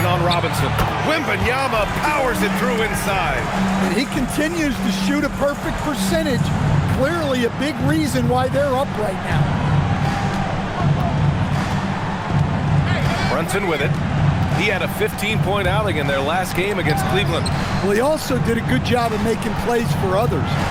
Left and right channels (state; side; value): identical; both; correlation 1.00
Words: on Robinson. Wembanyama powers it through inside. And he continues to shoot a perfect percentage. Clearly a big reason why they're up right now. Brunson with it. He had a 15-point outing in their last game against Cleveland. Well, he also did a good job of making plays for others.